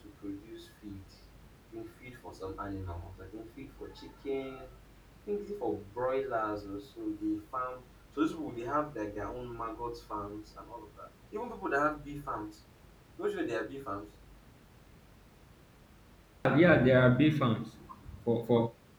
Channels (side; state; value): both; identical; correlation 1.00